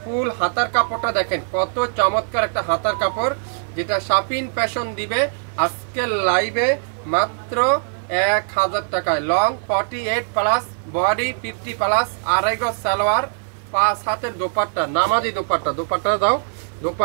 ফুল হাতার কাপড়টা দেখেন কত চমৎকার একটা হাতার কাপড়, যেটা শপিং ফ্যাশন দিবে আজকের লাইভে মাত্র 1000 টাকায়। লং 48 প্লাস, বডি 50 প্লাস, আড়াই গজ সালোয়ার, 5 হাতের দোপাট্টা, নামাজি দোপাট্টা। দোপাট্টা দাও,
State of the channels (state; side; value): silent; left; 56 dB below the other